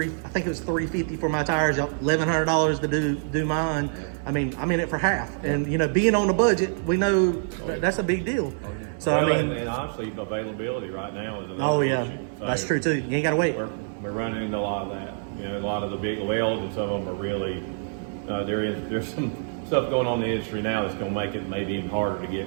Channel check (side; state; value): left; silent; 61 dB below the other